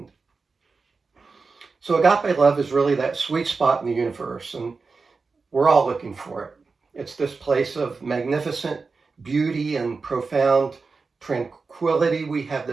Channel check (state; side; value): quieter; left; 4.4 dB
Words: So agape love is really that sweet spot in the universe, and we're all looking for it. It's this place of magnificent beauty and profound tranquility. We have